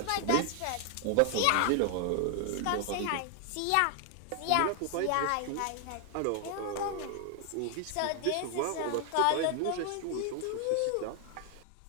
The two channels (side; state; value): both; different; correlation 0.00